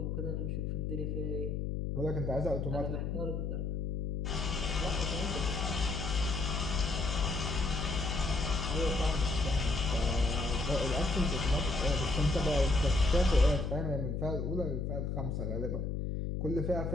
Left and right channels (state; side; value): noise; left; hum, 1 dB below the sound